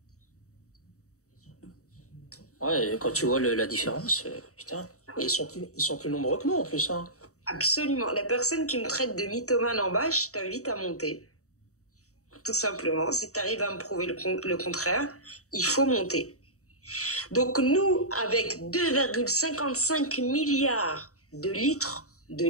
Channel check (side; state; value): right; late; 0.65 ms